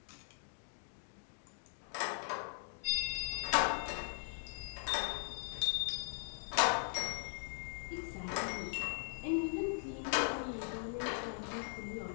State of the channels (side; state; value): right; silent; digital silence